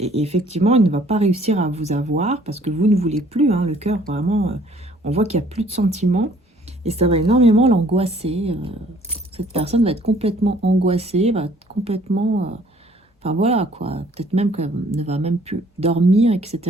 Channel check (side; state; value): both; normal; correlation 0.58